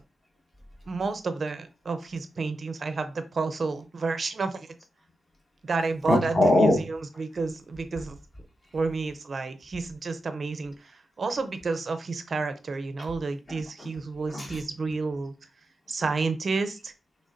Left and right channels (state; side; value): normal; both; correlation 0.88